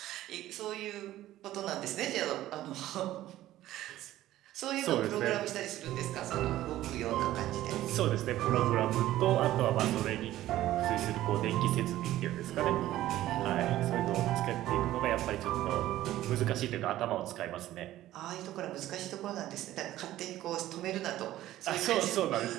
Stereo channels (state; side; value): quieter; left; 14.4 dB